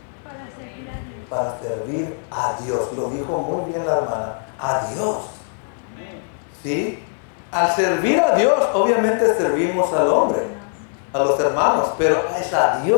Para servir a Dios. Lo dijo muy bien la hermana. A Dios. ¿Sí? Al servir a Dios, obviamente servimos al hombre, a los hermanos, pero es a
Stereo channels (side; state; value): right; silent; 60 dB below the other